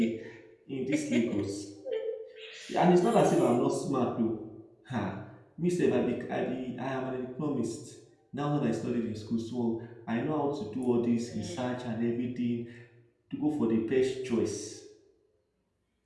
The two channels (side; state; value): both; identical; correlation 1.00